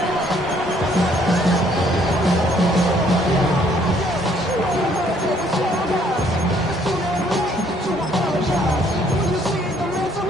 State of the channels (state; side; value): normal; both; correlation 0.64